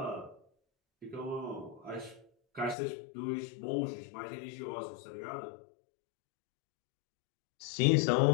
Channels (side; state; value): right; drops out; at 2.8 s